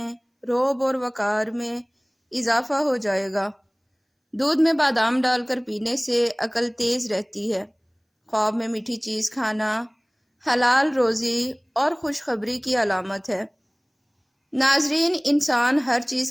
رعب اور وقار میں اضافہ ہو جائے گا۔ دودھ میں بادام ڈال کر پینے سے عقل تیز رہتی ہے۔ خواب میں میٹھی چیز کھانا حلال روزی اور خوشخبری کی علامت ہے۔ ناظرین، انسان ہر چیز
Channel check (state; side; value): identical; both; correlation 1.00